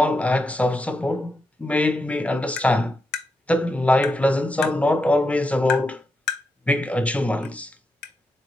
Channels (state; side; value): normal; both; correlation 0.85